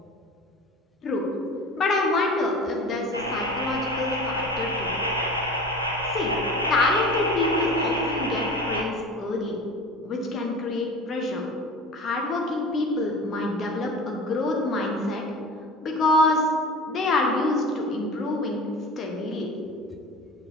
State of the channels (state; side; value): normal; both; correlation 0.36